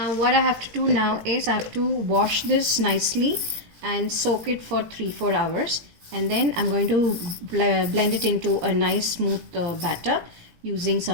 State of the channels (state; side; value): late; left; 18 ms